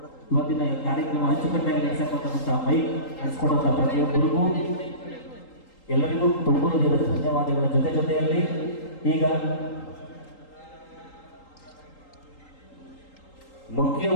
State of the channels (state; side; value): late; right; 3.8 ms